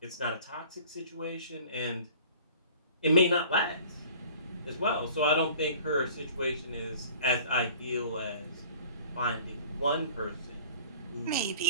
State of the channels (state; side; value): inverted; both; correlation -0.47